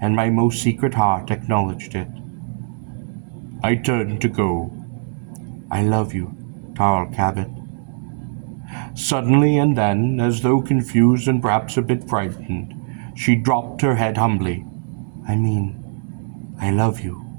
and my most secret heart acknowledged it. I turned to go. I love you, Tarl Cabot. Suddenly and then, as though confused and perhaps a bit frightened, she dropped her head humbly. I love you,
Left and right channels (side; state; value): left; silent; digital silence